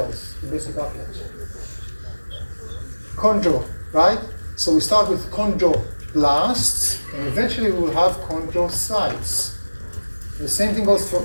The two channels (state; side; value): inverted; both; correlation -1.00